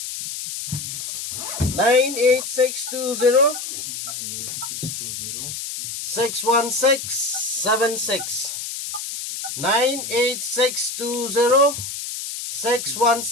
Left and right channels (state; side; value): noise; left; hiss, 6 dB below the sound